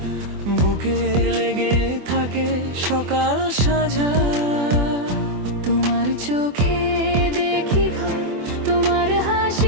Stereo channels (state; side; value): late; left; 24 ms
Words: বুকে লেগে থাকে সকাল সাজা। তোমার চোখে দেখি ঘর, তোমার